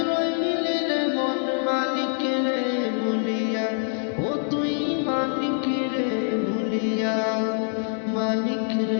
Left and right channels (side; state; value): right; silent; digital silence